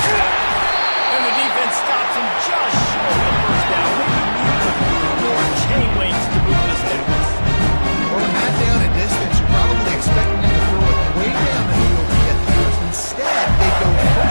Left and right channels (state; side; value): inverted; both; correlation -1.00